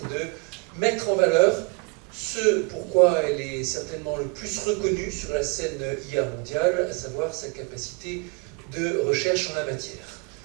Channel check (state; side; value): quieter; left; 31.1 dB